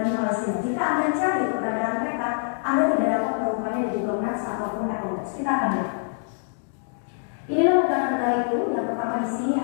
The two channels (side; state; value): right; silent; digital silence